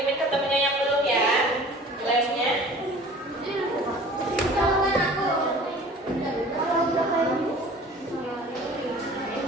ke temennya yang belum ya lemnya.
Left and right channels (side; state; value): both; normal; correlation 0.45